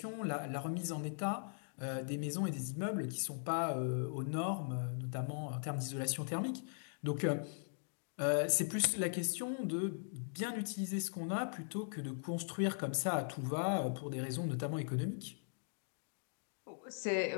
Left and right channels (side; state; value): right; silent; digital silence